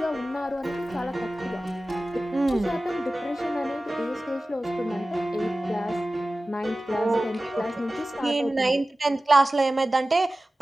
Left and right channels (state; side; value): normal; both; correlation 0.96